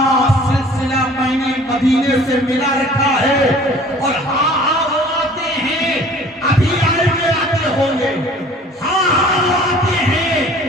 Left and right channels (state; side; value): normal; both; correlation 0.49